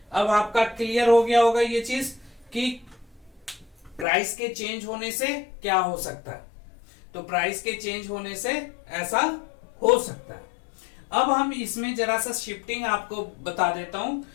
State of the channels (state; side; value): drops out; right; at 4.0 s